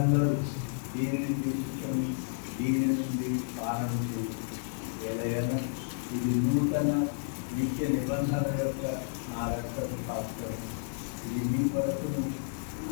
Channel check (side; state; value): right; silent; digital silence